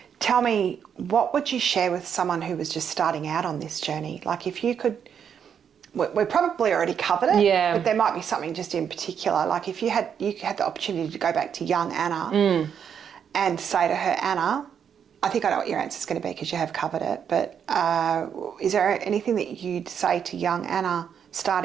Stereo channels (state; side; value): quieter; left; 7.9 dB